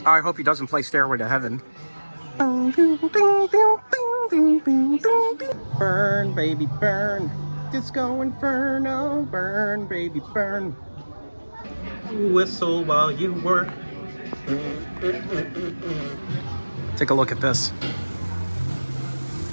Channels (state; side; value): inverted; both; correlation -1.00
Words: I hope he doesn't play Stairway to Heaven. Burn, baby, burn. Disco Inferno. Burn, baby, burn. Whistle while you work. Take a look at this.